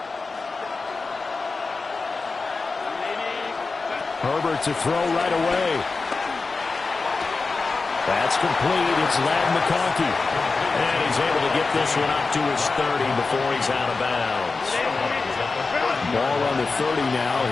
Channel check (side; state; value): right; quieter; 4.1 dB